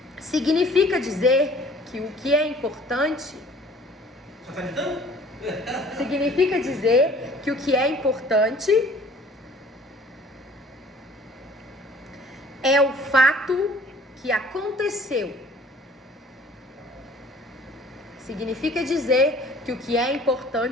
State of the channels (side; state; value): both; normal; correlation 0.52